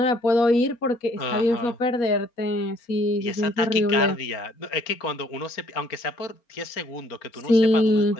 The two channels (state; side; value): late; right; 4.3 ms